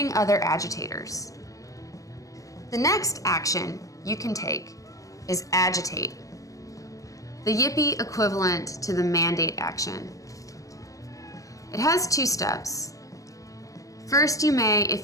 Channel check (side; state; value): right; late; 0.16 ms